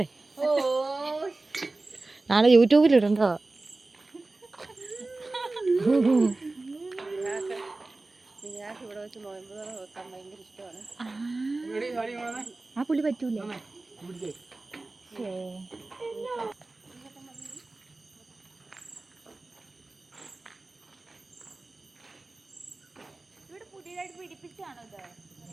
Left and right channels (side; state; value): left; quieter; 3.2 dB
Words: നാളെ യൂട്യൂബിലിടണ്ടോ. ആ പുള്ളി പറ്റൂലേ? ഇവിടെ പുതിയതായിട്ട് പിടിപ്പിച്ചാണോ ഇത്?